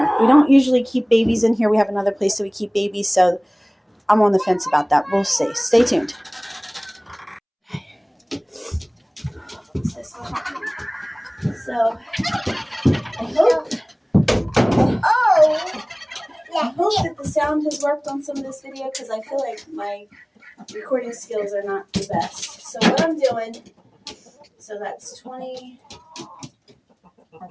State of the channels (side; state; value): both; identical; correlation 1.00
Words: We don't usually keep babies in here. We have another place that we keep babies, so I'm on the fence about that. We'll see. Stay tuned. So I hope that the sound has worked on some of this video, because I feel like my recording skills are not the best. So what I'm doing, so that's 20,